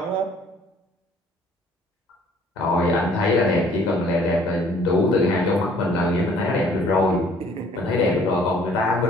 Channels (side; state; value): both; normal; correlation 0.58